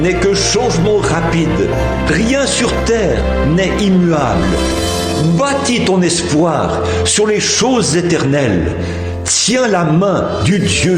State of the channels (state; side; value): identical; both; correlation 1.00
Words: n'est que changement rapide, rien sur terre n'est immuable. Bâtis ton espoir sur les choses éternelles, tiens la main du Dieu